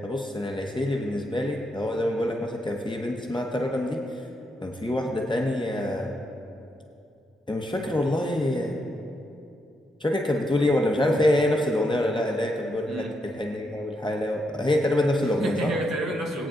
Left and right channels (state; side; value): normal; both; correlation 0.80